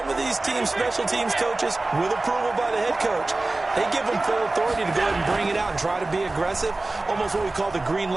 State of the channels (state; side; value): quieter; left; 3.1 dB